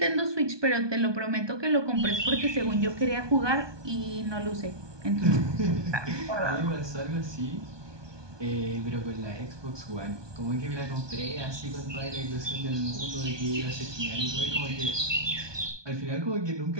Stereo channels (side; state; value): left; late; 1.2 ms